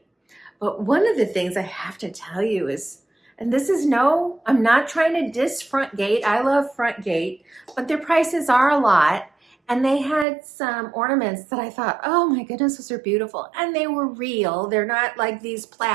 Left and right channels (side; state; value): left; drops out; at 10.2 s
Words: But one of the things I have to tell you is, and this is no, I'm not trying to diss Front Gate. I love Front Gate, but their prices are a lot. And they had some ornaments that I thought, oh my goodness, those are beautiful. And they were real. They're not like these